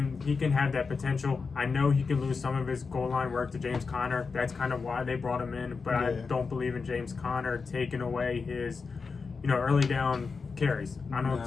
He can have that potential. I know he can lose some of his goal line work to James Conner. That's kind of why they brought him in, but I don't believe in James Conner taking away his, early down carries. I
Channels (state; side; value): quieter; right; 4.9 dB